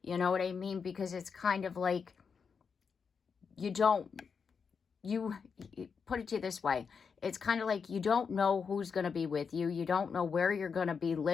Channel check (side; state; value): right; quieter; 5.9 dB